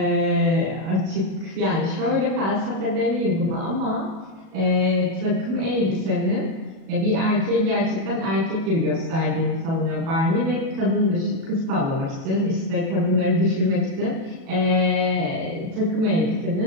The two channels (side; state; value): left; late; 37 ms